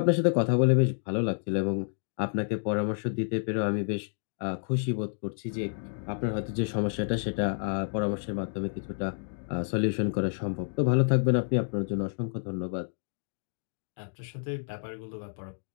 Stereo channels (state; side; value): silent; right; digital silence